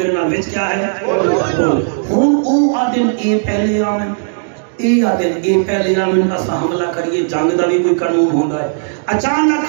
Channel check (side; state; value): left; silent; digital silence